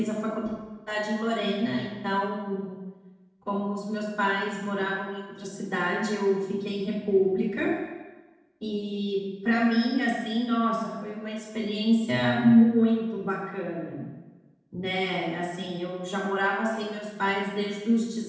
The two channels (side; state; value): both; identical; correlation 1.00